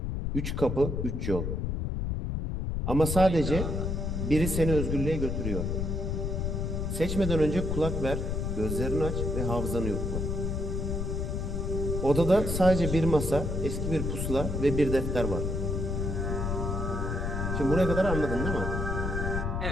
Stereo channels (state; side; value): noise; left; rumble, 1 dB below the sound